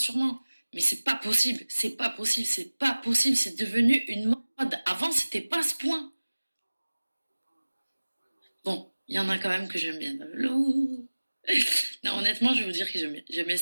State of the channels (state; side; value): inverted; both; correlation -1.00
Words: Mais c'est pas possible. C'est pas possible. C'est pas possible. C'est devenu une mode. Avant, c'était pas ce point. Bon, il y en a quand même que j'aime bien. Non, honnêtement, je vais vous dire que j'aime bien